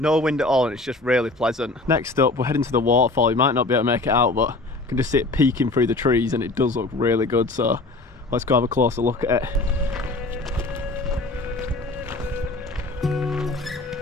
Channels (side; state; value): right; quieter; 3.1 dB